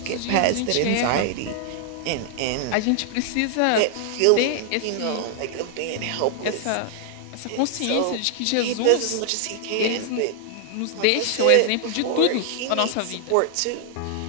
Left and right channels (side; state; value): both; different; correlation 0.00